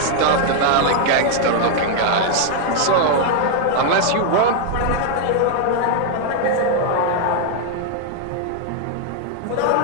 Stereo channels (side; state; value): both; different; correlation 0.00